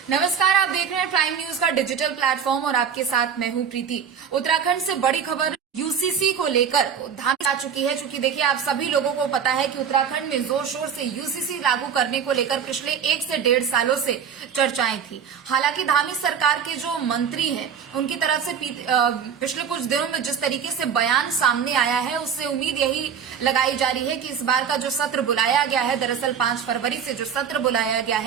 नमस्कार, आप देख रहे हैं प्राइम न्यूज का डिजिटल प्लेटफॉर्म और आपके साथ मैं हूं प्रीति। उत्तराखंड से बड़ी खबर यूसीसी को लेकर धामी आ चुकी है। चूंकि देखिए, आप सभी लोगों को पता है कि उत्तराखंड में जोर शोर से यूसीसी लागू करने को लेकर पिछले 1 से 1.5 सालों से चर्चाएं थी। हालांकि धामी सरकार के जो मंत्री हैं, उनकी तरफ से पिछले कुछ दिनों में जिस तरीके से बयान सामने आया है, उससे उम्मीद यही लगाई जा रही है कि इस बार का जो सत्र बुलाया गया है, दरअसल 5 फरवरी से जो सत्र बुलाया गया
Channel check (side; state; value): left; quieter; 7.5 dB